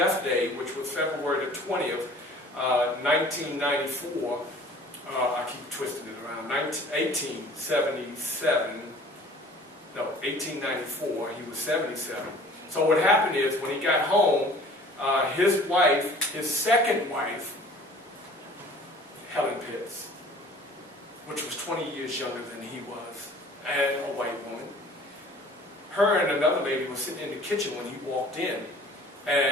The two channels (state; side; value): normal; both; correlation 0.48